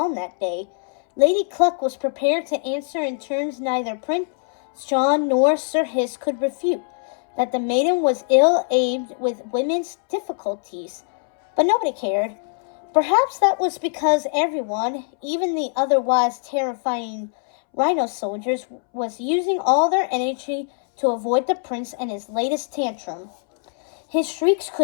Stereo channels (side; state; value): right; silent; 64 dB below the other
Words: that day. Lady Cluck was prepared to answer in terms neither Prince John nor Sir Hiss could refute, that the maiden was ill-aimed with women's difficulties. But nobody cared. Perhaps that was because everyone, even the otherwise terrifying rhino soldiers, was using all their energy to avoid the prince and his latest tantrum. His shrieks